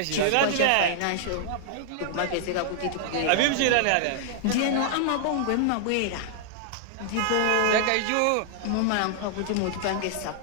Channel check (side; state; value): both; different; correlation -0.01